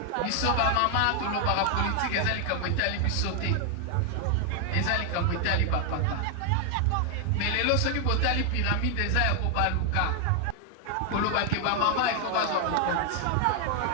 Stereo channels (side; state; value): both; different; correlation 0.00